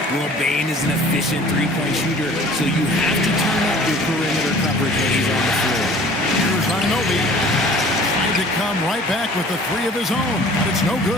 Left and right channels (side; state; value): both; normal; correlation 0.49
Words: Well, Bain is an efficient three-point shooter, so you have to turn up your perimeter coverage when he's on the floor. Here's Anunoby. Trying to come right back with the three of his own, but it's no